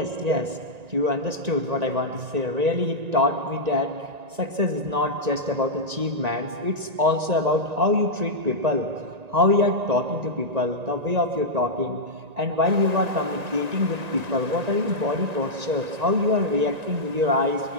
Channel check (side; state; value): left; late; 1.9 ms